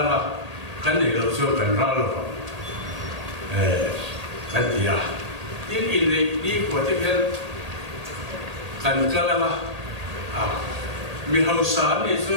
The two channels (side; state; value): left; late; 1.8 ms